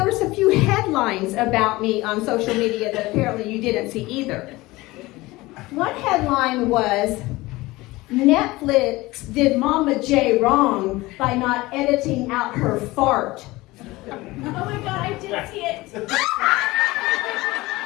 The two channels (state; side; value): quieter; right; 20.2 dB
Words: was a few headlines about me on social media that apparently you didn't see either. One headline was, Netflix did MamaJwjamie wrong by not editing out her fart. Oh my God, I did see it.